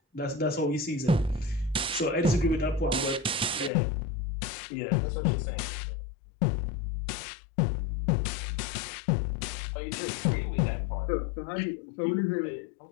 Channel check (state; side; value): drops out; right; at 3.7 s